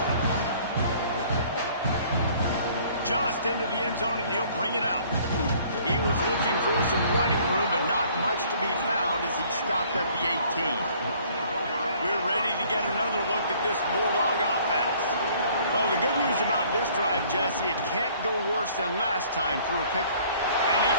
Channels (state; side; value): inverted; both; correlation -0.57